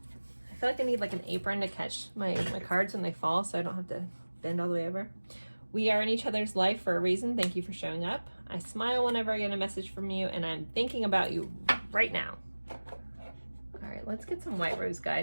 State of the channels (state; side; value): inverted; both; correlation -1.00